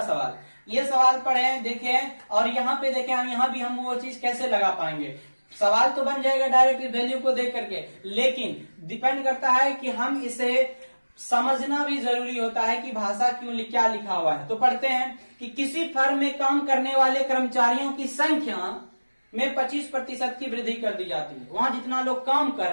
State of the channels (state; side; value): inverted; both; correlation -1.00